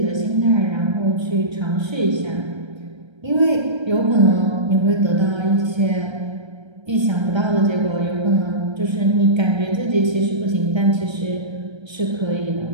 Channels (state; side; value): late; left; 1.3 ms